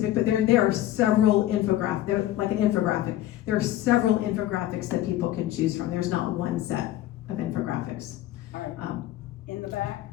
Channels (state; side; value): quieter; right; 13.9 dB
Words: but there are several infographics. They're like an infographic. There are several infographics that people can choose from. There's not one set of infographics. All right, in the back.